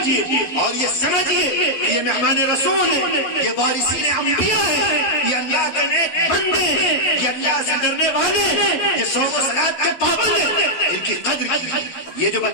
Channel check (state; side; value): late; right; 11 ms